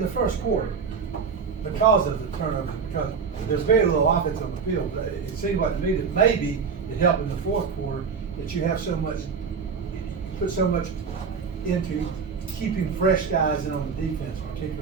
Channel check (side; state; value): left; quieter; 5.7 dB